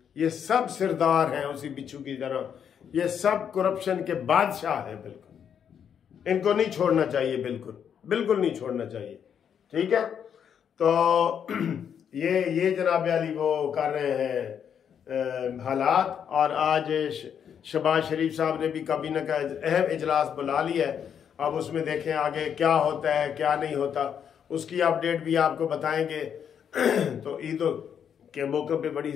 ये सब सरदार हैं उसी बिच्छू की तरह। ये सब करप्शन के बादशाह हैं बिल्कुल। इनको नहीं छोड़ना चाहिए, बिल्कुल नहीं छोड़ना चाहिए। ठीक है, तो ये जनाब अली वो कर रहे हैं हालात। और आज शहबाज शरीफ साहब ने भी काबीना का अहम इजलास बुला लिया है। अब उसमें देखें आगे क्या होता है क्या नहीं होता, उसकी अपडेट भी आपको बताएंगे। तो ईद के मौके पे बड़ी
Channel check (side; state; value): right; quieter; 8.1 dB